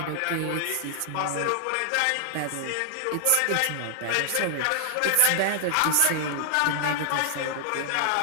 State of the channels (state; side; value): different; both; correlation -0.01